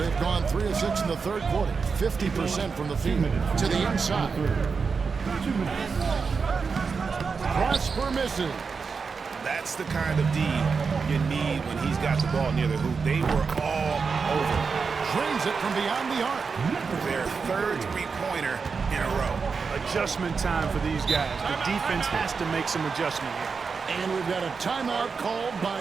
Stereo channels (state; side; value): quieter; left; 5.2 dB